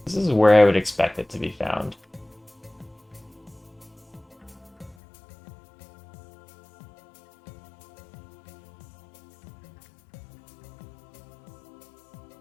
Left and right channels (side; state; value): right; drops out; at 5.0 s